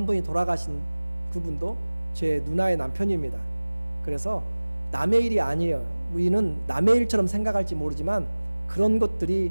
분이 돌아가신 그분도 제 누나의 남편입니다. 그래서 남의 일이 아니에요. 우리는 남의 일처럼 생각할지 모르지만 그런 것들이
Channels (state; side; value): inverted; both; correlation -1.00